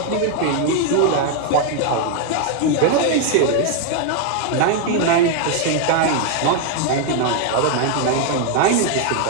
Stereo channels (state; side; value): different; both; correlation 0.01